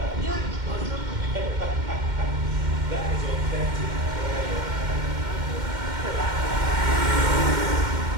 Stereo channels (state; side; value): late; left; 2.1 ms